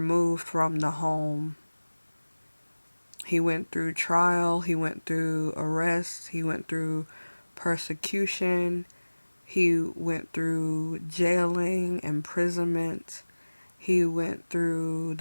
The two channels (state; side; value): inverted; both; correlation -1.00